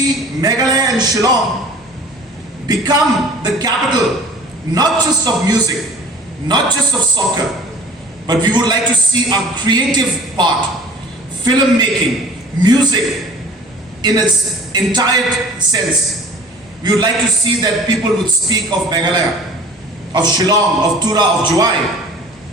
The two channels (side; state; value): both; normal; correlation 0.45